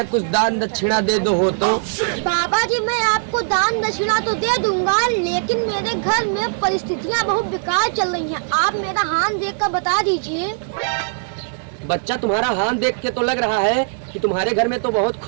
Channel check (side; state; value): left; silent; 66 dB below the other